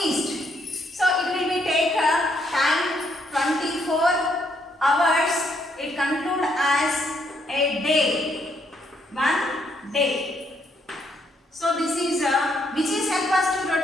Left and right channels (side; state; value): both; normal; correlation 0.73